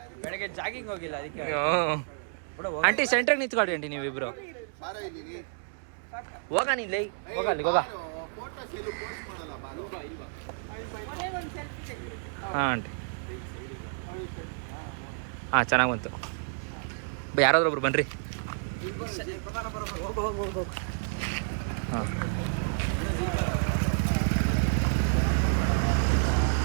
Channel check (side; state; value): left; silent; digital silence